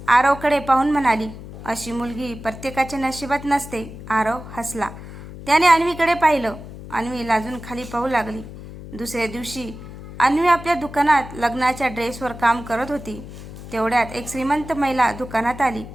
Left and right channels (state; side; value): noise; left; hum, 13 dB below the sound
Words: आरवकडे पाहून म्हणाली, अशी मुलगी प्रत्येकाच्या नशिबात नसते। आरव हसला। त्याने अन्वीकडे पाहिलं। अन्वी लाजून खाली पाहू लागली। दुसऱ्या दिवशी अन्वी आपल्या दुकानात लग्नाच्या ड्रेसवर काम करत होती। तेवढ्यात एक श्रीमंत महिला दुकानात आली।